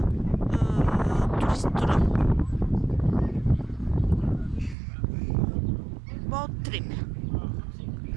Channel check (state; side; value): drops out; left; at 4.8 s